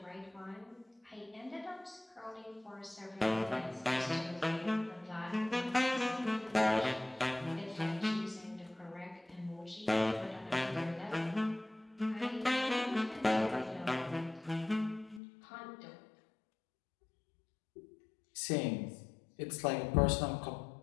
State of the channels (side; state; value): right; drops out; at 15.2 s